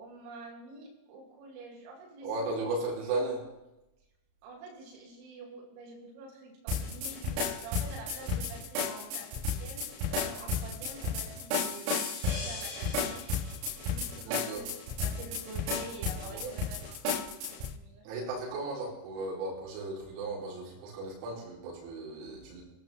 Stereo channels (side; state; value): left; late; 34 ms